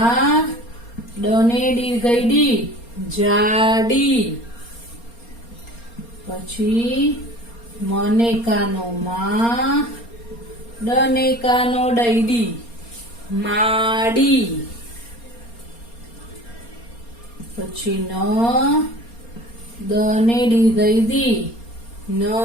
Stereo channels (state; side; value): late; right; 4.3 ms